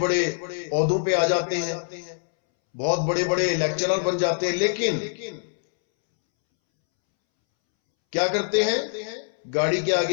ओहदों पे आ जाते हैं, बहुत बड़े बड़े लेक्चरर बन जाते हैं, लेकिन क्या करते हैं? गाड़ी के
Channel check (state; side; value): silent; right; 62 dB below the other